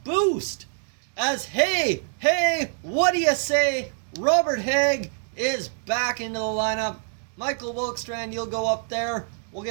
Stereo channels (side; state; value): left; silent; 62 dB below the other